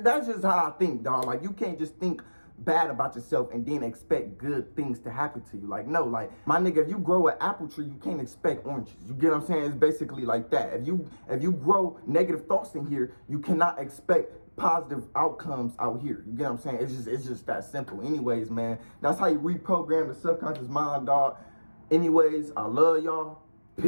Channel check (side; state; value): both; inverted; correlation -1.00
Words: that's just how I think, dog. Like, you can't just think bad about yourself and then expect good things to happen to you. Like, no, like, my nigga, if you grow an apple tree, you can't expect oranges. You get what I'm saying? It's basically like that. If you grow negative thoughts in here, you cannot expect positive outcomes out here. You get what I'm saying? It's just that simple. Anyways, man, that's how you reprogram the subconscious mind, dog. Anyways, I love y'all.